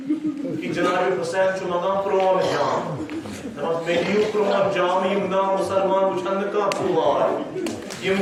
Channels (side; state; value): both; identical; correlation 1.00